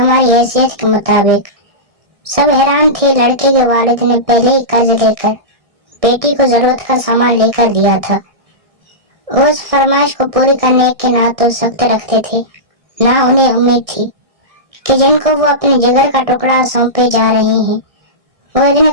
حیثیت کے مطابق۔ سب حیران تھے۔ لڑکے کے والد نے پہلے ہی قرض لے کر بیٹی کو ضرورت کا سامان لے کر دیا تھا۔ وہ اس فرمائش کو پوری کرنے کے نہ تو سخت رکھتے تھے، نہ انہیں امید تھی کہ جن کو وہ اپنے جگر کا ٹکڑا سونپے جا رہے ہیں وہ اتنے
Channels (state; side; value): late; left; 1.6 ms